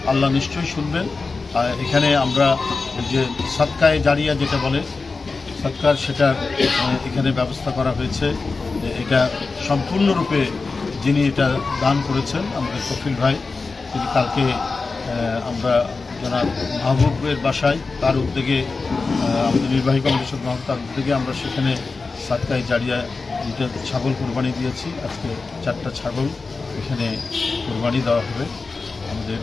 আল্লাহ নিশ্চয়ই শুনবেন। আর এখানে আমরা যে সাদকায়ে জারিয়া যেটা বলে সৎকার, সেটা এখানে ব্যবস্থা করা হয়েছে। এটা সম্পূর্ণরূপে যিনি এটা দান করেছেন আমাদের কফিল ভাই, তিনি কালকে আমরা জনাব মাহবুবের বাসায়, তার উদ্যোগে, আমাদের নির্বাহী কমিটির মাহবুব, তার উদ্যোগে আমরা সেখানে সাদকায়ে জারিয়া এটা ছাগল কোরবানি দিয়েছি। আজকে 4টা ছাগল এখানে কোরবানি দেওয়া হবে। আমাদের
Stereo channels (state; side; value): quieter; right; 4.1 dB